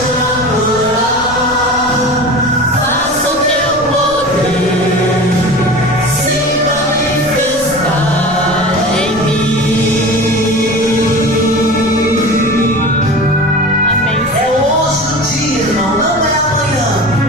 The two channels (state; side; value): noise; left; rumble, 20 dB below the sound